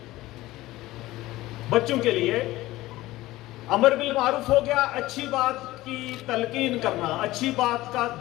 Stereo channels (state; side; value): quieter; right; 17.4 dB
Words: बच्चों के लिए अमर बिल मारूफ हो गया, अच्छी बात की तलकीन करना, अच्छी बात का